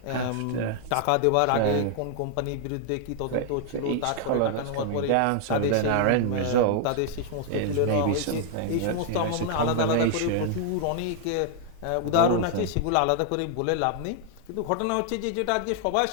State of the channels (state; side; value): different; both; correlation 0.00